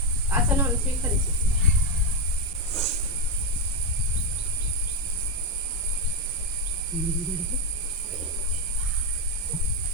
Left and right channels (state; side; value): normal; both; correlation 0.06